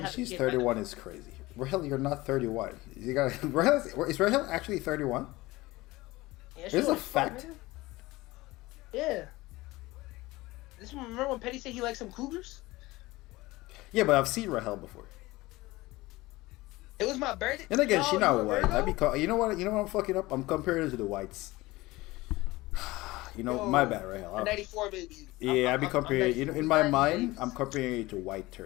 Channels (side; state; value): right; quieter; 20.0 dB